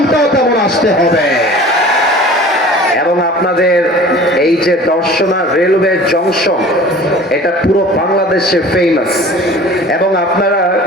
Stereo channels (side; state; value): both; normal; correlation 0.43